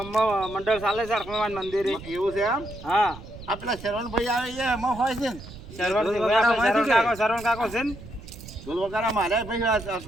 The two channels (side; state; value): right; noise; rumble, 15 dB below the sound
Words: મંડળ ચાલે છે હનુમાન મંદિરે. એવું છે એમ? હા આપણા શરવણભાઈ આવે છે એમાં હોય છે ને? શરવણ કાકો છે ને ઢોલ વગાડા મારે ભાઈ